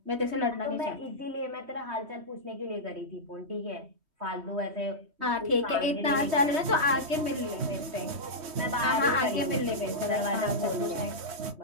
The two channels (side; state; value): left; late; 3.2 ms